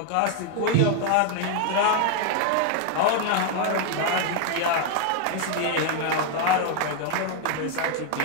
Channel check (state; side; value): different; both; correlation 0.00